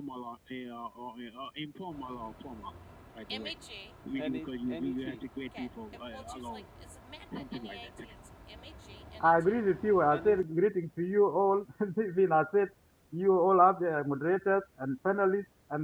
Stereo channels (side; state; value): both; identical; correlation 1.00